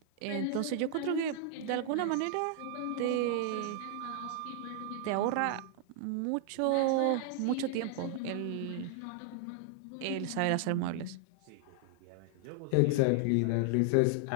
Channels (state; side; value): different; both; correlation 0.00